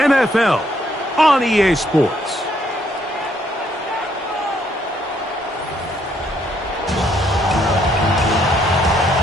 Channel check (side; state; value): both; normal; correlation 0.70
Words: on EA Sports.